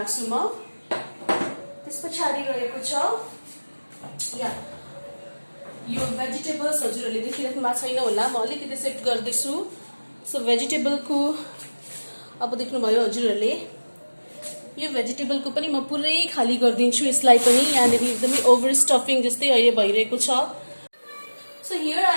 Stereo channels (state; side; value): inverted; both; correlation -1.00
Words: म। त्यस पछाडि रहेको छ या यो भेजिटेबल्स, हजुरहरूले देखिराख्नु भएको छैन होला, म अलिकति सेट गर्दैछु। सो भेजिटेबलको अब देख्नुभयो हजुरहरूले, यो भेजिटेबलको पनि म पुरै खाली गरिदिन्छु। यसलाई पनि यहाँनिर एकदमै ओभर स्टफिङ जस्तै अहिले भइरहेको छ। सो हियर